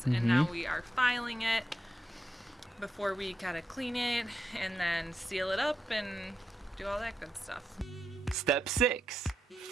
and now we are filing it before we gotta clean it and then seal it up and do all that good stuff. Step 6,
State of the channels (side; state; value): both; normal; correlation 0.86